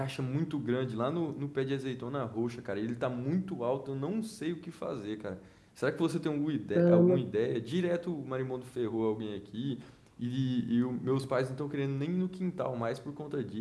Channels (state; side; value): identical; both; correlation 1.00